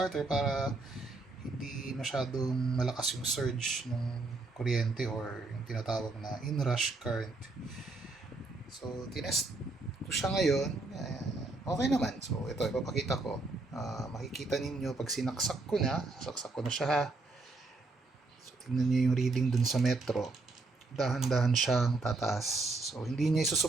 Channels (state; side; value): quieter; left; 3.4 dB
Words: para hindi masyadong malakas yung surge ng kuryente or yung tinatawag na inrush current. So, tinest ko siya ngayon. Okay naman. So, ito, ipapakita ko. Makikita ninyo pag saksak ko na siya ha. So, tingnan nyo yung reading dun sa metro. Dahan-dahan siyang tataas. So, hindi niya